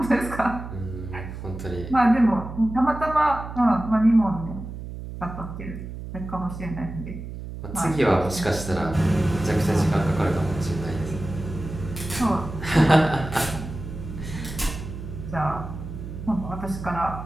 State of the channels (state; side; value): noise; right; hum, 9 dB below the sound